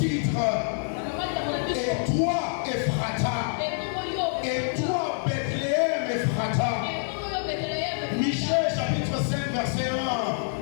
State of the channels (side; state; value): right; silent; digital silence